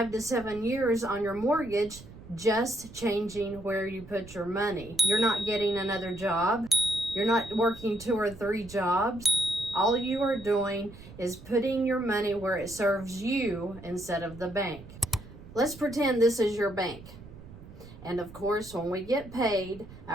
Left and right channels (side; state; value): right; noise; rumble, 17 dB below the sound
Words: to 7 years on your mortgage, just changing where you put your money. You're not getting another job. You're not working 2 or 3 jobs. All you are doing is putting your money where it serves you instead of the bank. Let's pretend this is your bank. And of course, when we get paid,